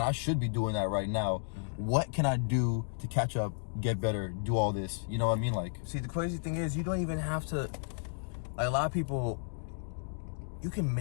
I should be doing that right now. What can I do to catch up, get better, do all this? You know what I mean? Like, see, the crazy thing is you don't even have to, like, a lot of people, you can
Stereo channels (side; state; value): right; silent; digital silence